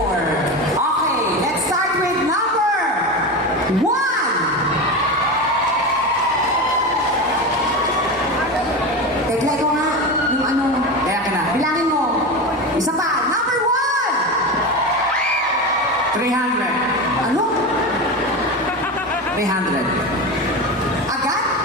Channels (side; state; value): both; normal; correlation 0.22